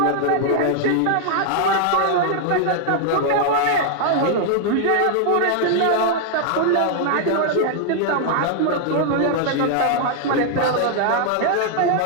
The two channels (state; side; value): different; both; correlation 0.00